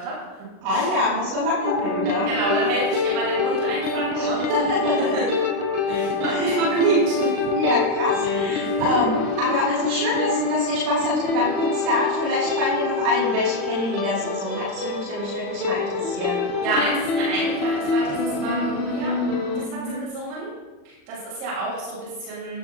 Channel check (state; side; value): late; left; 39 ms